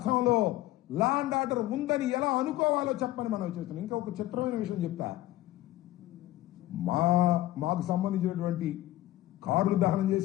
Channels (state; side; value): quieter; right; 15.6 dB